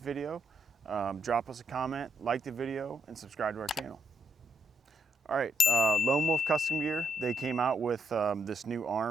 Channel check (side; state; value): both; normal; correlation 0.76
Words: drop us a comment, like the video, and subscribe to our channel. All right, Lone Wolf Custom Gear, they came out with this new